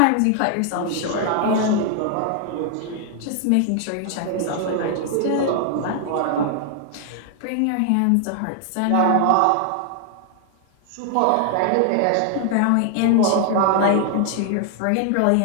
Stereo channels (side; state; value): both; different; correlation 0.00